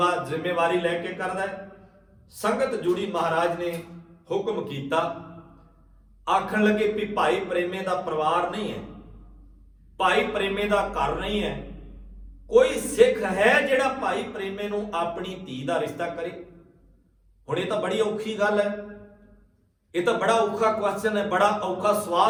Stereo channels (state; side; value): identical; both; correlation 1.00